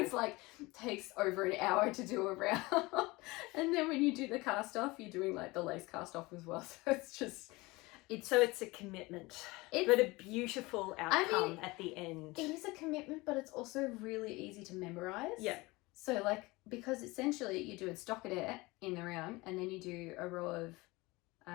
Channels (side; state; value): right; quieter; 22.5 dB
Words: like takes over an hour to do a round. And then when you do the cast off, you're doing like the lace cast off as well. So it's just it's a commitment, but a beautiful outcome at the end. It is a commitment, but it's also really easy to memorize. Yeah. So like, because essentially you do a stockinette in the round, and then you do a row of